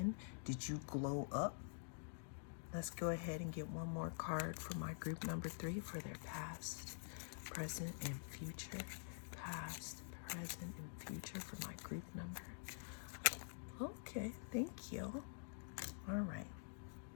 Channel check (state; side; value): silent; right; digital silence